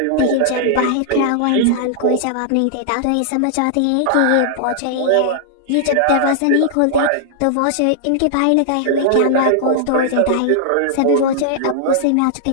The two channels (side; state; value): both; different; correlation -0.01